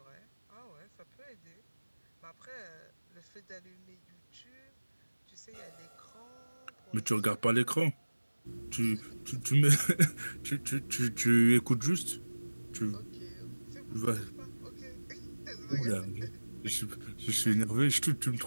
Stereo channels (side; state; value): both; inverted; correlation -1.00